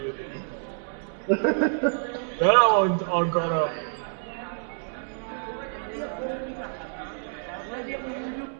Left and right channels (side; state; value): left; silent; digital silence